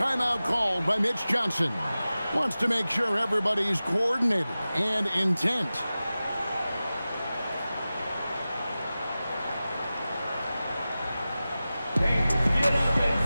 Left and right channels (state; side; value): inverted; both; correlation -0.96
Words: called by Mitch Johnson. Wants to make sure everybody's coordinated and intent.